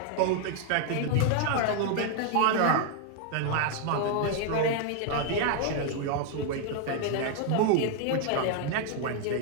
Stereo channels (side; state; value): both; different; correlation 0.00